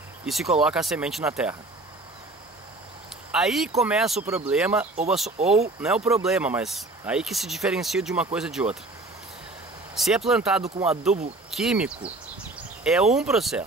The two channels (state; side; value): quieter; left; 3.0 dB